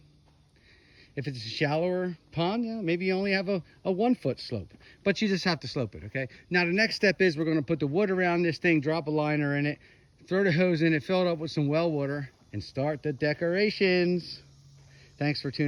If it's a shallower pond, yeah, maybe you only have a 1-foot slope, but you just have to slope it, okay? Now the next step is we're gonna put the wood around this thing, drop a liner in it, throw the hose in it, fill it up with some well water, and start the decorations. Thanks for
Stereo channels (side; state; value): both; identical; correlation 1.00